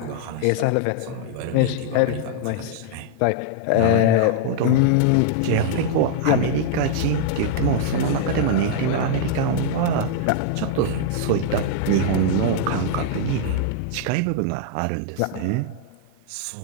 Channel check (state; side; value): different; both; correlation -0.01